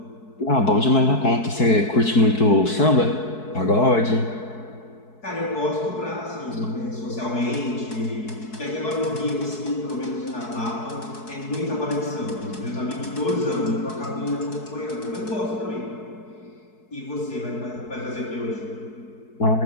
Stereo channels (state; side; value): late; right; 4.7 ms